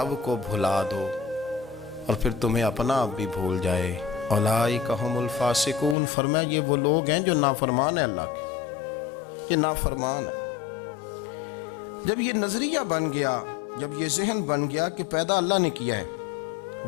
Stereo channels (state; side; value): drops out; right; at 6.0 s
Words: کو بھلا دو اور پھر تمہیں اپنا آپ بھی بھول جائے۔ اولئک ھم الفاسقون، فرمایا یہ وہ لوگ ہیں جو نافرمان ہیں اللہ کے، یہ نافرمان ہے۔ جب یہ نظریہ بن گیا، جب یہ ذہن بن گیا کہ پیدا اللہ نے کیا ہے،